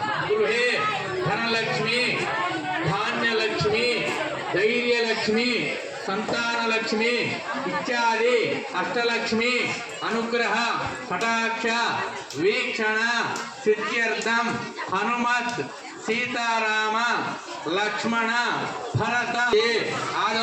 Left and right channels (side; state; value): both; identical; correlation 1.00